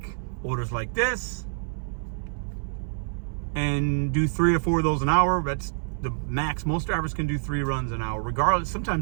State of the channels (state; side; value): silent; left; 60 dB below the other